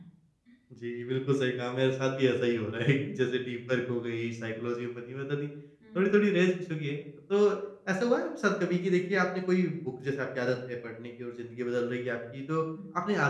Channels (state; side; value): identical; both; correlation 1.00